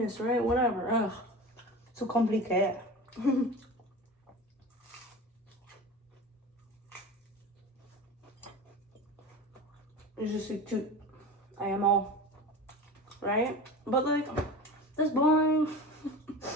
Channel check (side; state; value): both; normal; correlation 0.31